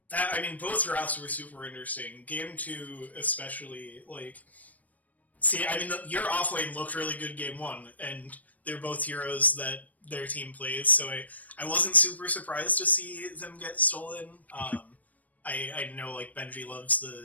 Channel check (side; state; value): right; late; 0.074 ms